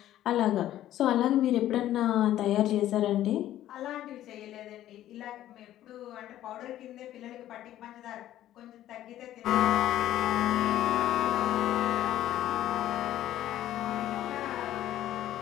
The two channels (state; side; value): quieter; right; 13.0 dB